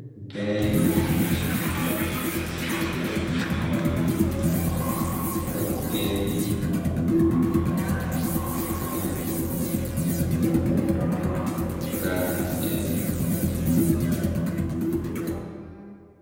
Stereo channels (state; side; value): identical; both; correlation 1.00